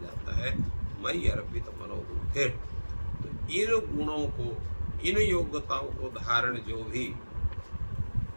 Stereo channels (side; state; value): both; inverted; correlation -1.00